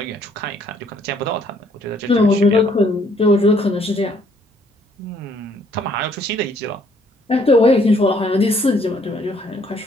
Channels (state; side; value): normal; both; correlation 0.65